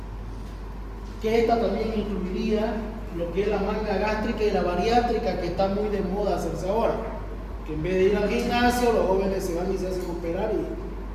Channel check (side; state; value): both; identical; correlation 1.00